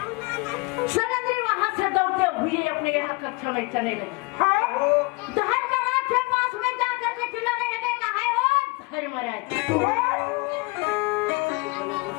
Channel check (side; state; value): right; quieter; 26.6 dB